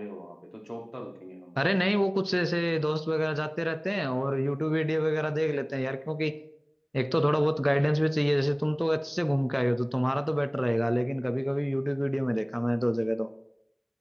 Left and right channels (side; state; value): both; identical; correlation 1.00